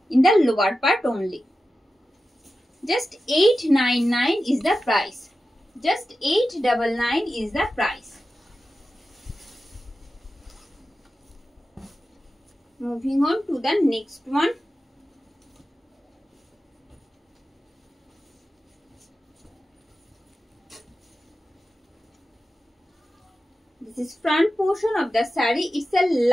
in the lower part only. Just 899 is the price. Just 899 is the price. Moving on to the next one. This is front portion of the saree. It's the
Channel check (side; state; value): both; normal; correlation 0.93